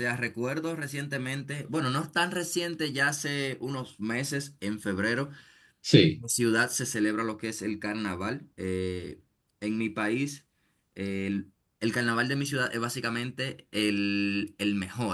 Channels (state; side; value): identical; both; correlation 1.00